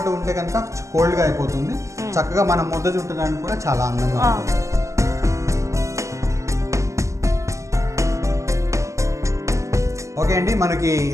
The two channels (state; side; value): late; left; 0.15 ms